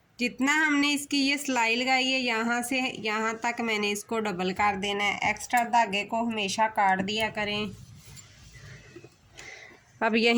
जितना हमने इसकी ये सिलाई लगाई है यहाँ से यहाँ तक मैंने इसको डबल कर देना है। एक्स्ट्रा धागे को हमेशा काट दिया करें। अब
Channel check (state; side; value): identical; both; correlation 1.00